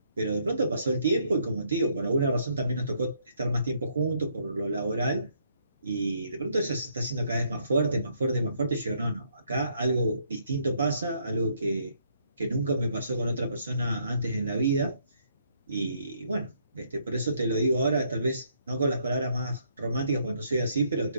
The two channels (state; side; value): inverted; both; correlation -0.70